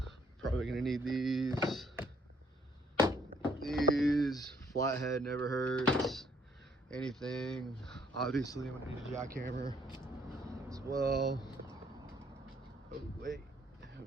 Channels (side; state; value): both; normal; correlation 0.66